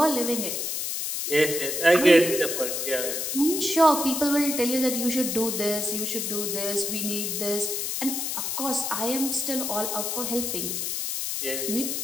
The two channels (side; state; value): left; noise; hiss, 2 dB below the sound